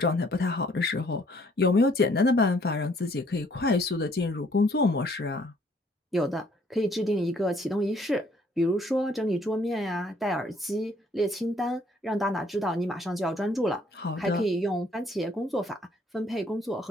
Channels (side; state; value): both; normal; correlation 0.63